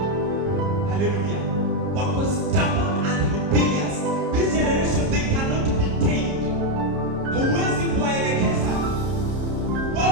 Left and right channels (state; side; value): late; left; 30 ms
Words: Hallelujah. Wako stubborn and rebellious. This generation, they cannot be tamed. Huwezi kuwaelekeza.